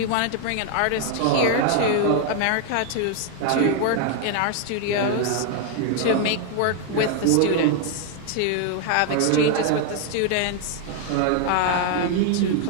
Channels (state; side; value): different; both; correlation 0.00